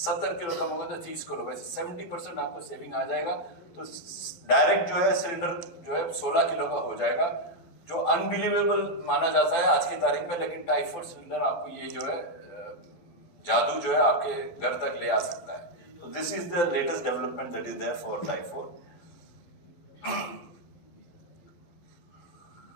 किलो कम होगा तो 30 किलो, वैसे 70% आपको सेविंग आ जाएगा। तो डायरेक्ट जो है सिलेंडर जो है 16 किलो का हो जाएगा, जो अनबिलीवेबल माना जाता है आज की तारीख में। लेकिन टाइप 4 सिलेंडर आपको ये जो है जादू जो है आपके घर तक ले आ सकता है। तो this is the latest development that is there for type 4।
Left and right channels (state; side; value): late; right; 12 ms